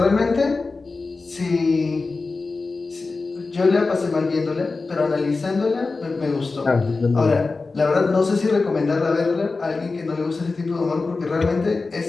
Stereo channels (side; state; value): right; quieter; 3.9 dB